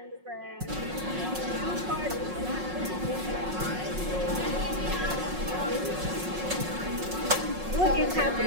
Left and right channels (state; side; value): late; left; 5.5 ms